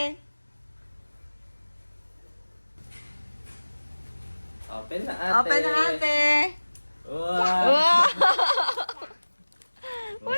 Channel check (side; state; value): both; inverted; correlation -1.00